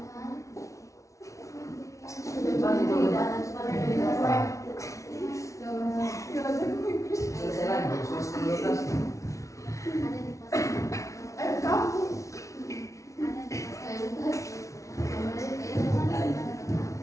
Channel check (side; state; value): right; late; 0.15 ms